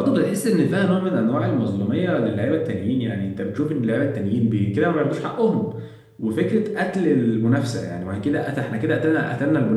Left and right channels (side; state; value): both; identical; correlation 1.00